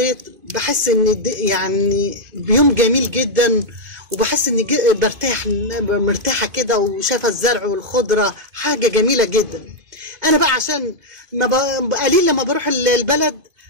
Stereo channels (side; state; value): left; late; 2.5 ms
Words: بحس ان يعني بيوم جميل جدا، وبحس اني مرتاحه كده وشايفه الزرع والخضره، حاجه جميله جدا. انا بقى عشان قليل لما بروح البلد